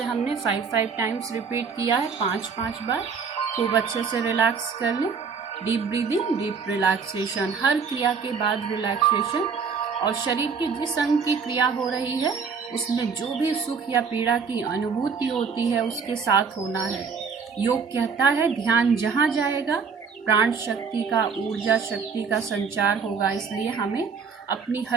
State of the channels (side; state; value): left; quieter; 5.7 dB